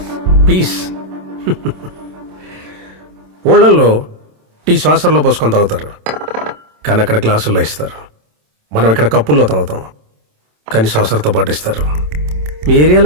పీస్. ఊళ్ళల్లో టీ శ్వాసంలో పోసుకొని తాగుతారు, కానీ అక్కడ గ్లాసుల్లో ఇస్తారు. మనం ఇక్కడ కప్పుల్లో తాగుతాం, కానీ శ్వాసంతో పాటు ఇస్తారు. మీ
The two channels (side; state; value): left; late; 27 ms